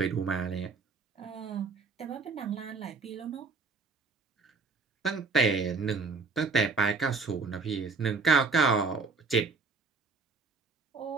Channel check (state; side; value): quieter; left; 4.3 dB